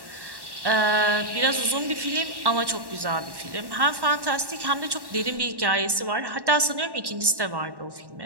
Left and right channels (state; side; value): late; left; 1.1 ms